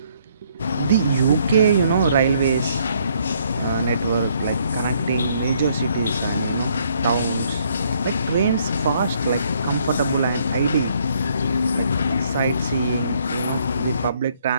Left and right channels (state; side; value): inverted; both; correlation -0.67